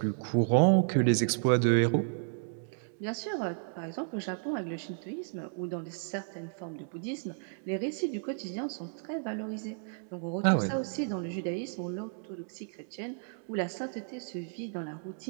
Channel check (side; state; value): left; silent; digital silence